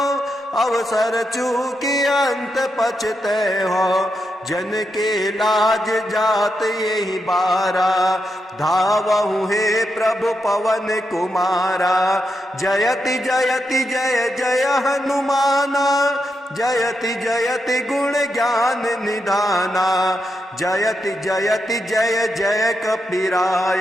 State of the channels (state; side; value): normal; both; correlation 0.84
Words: अवसर चूकी अंत पछते हो। जन के लाज जात यही बारा, धावहु हे प्रभु पवन कुमारा। जयति जयति जय जय हनुमाना, जयति जयति गुण ज्ञान निधाना। जयति जयति जय जय